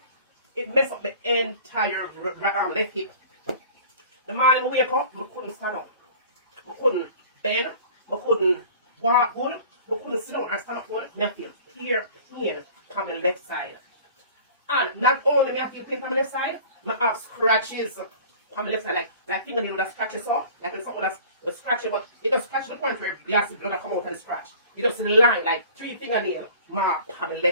it mess up my entire left hip. The morning I wake up, I couldn't stand up. I couldn't bend. I couldn't walk good. I couldn't sit down and stand up good. I feel clear pain on the left side. And not only me I feel pain on the left side, I have scratches on the left side, like fingernail that scratches off, like something that's scratching, but it does scratch to the point where the acid blood come out of the scratch. You just line like 3 fingernail mark on the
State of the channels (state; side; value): inverted; both; correlation -0.45